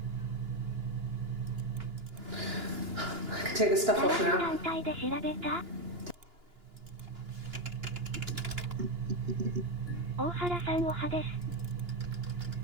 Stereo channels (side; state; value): left; late; 2.9 ms